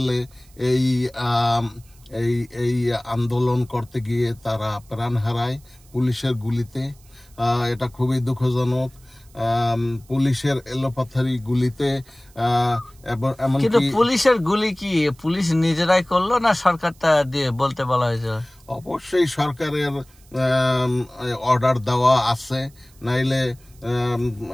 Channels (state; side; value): noise; right; hiss, 28 dB below the sound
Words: এই এই এই আন্দোলন করতে গিয়ে তারা প্রাণ হারায় পুলিশের গুলিতে। এটা খুবই দুঃখজনক। পুলিশের এলোপাথারি গুলিতে এমনকি পুলিশের গুলি কি পুলিশ নিজেরাই করলো না সরকারটা দিয়ে বলতে বলা হয়েছে? অবশ্যই সরকারের অর্ডার দেওয়া আছে, নাইলে